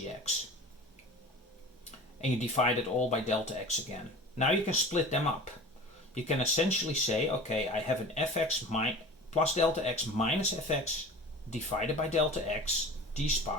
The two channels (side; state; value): both; normal; correlation 0.38